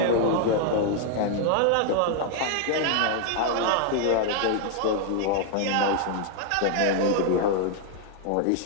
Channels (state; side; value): different; both; correlation 0.00